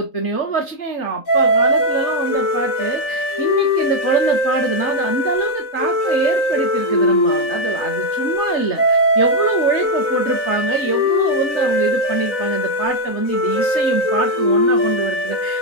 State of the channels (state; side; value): late; right; 4.0 ms